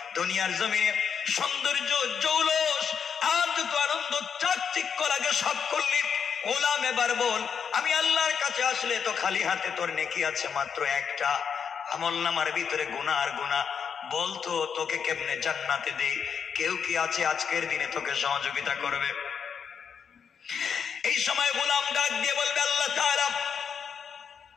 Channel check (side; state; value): right; quieter; 6.9 dB